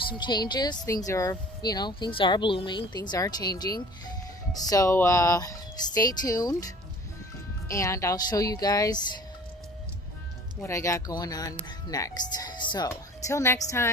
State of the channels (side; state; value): both; normal; correlation 0.47